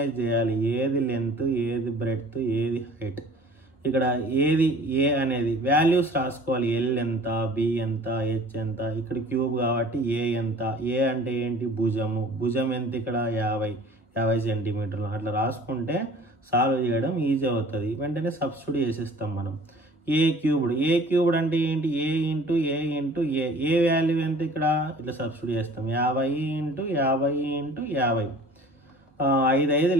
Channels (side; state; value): both; normal; correlation 0.47